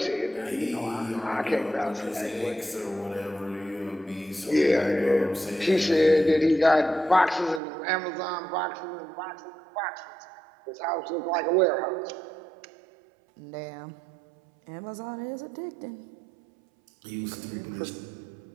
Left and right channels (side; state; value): left; drops out; at 7.6 s